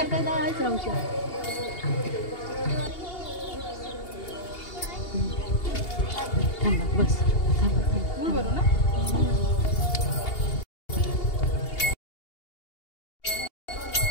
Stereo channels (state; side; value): late; right; 2.8 ms